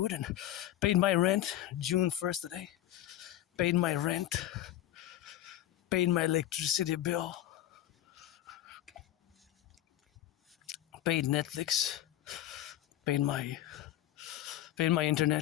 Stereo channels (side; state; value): right; quieter; 13.1 dB